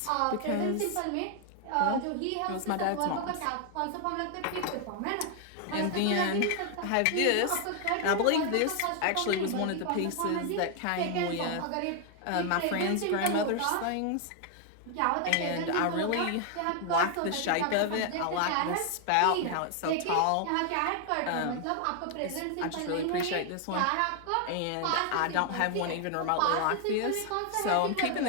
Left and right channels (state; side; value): different; both; correlation 0.00